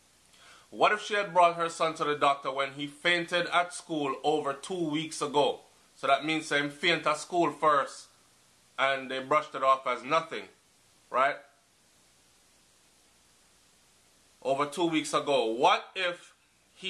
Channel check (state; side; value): identical; both; correlation 1.00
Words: What if she had brought her son to the doctor when he fainted at school over 2 weeks ago? So that means him faint at school first, and they brushed it off as nothing. Right? Over 2 weeks ago. What if